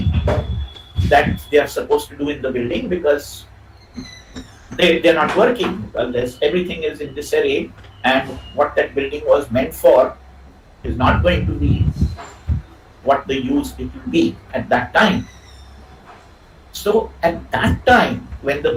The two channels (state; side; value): identical; both; correlation 1.00